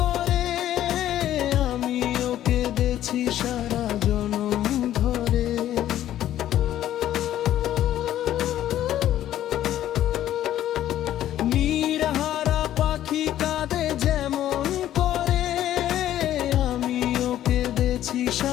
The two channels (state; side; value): quieter; right; 12.3 dB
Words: আমি ওকে দেখছি সারা জনম ধরে। নিরাহারা পাখি কাঁদে যেমন করে, আমি ওকে দেখছি